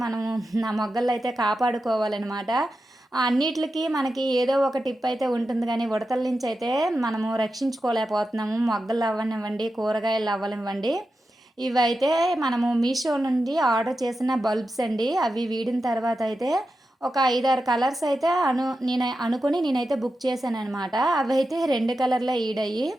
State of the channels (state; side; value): normal; both; correlation 0.90